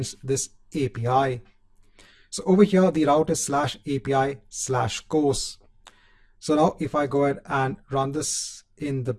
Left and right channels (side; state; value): both; identical; correlation 1.00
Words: this API. So over here, the route is /API/course. So now if I go ahead and run this in the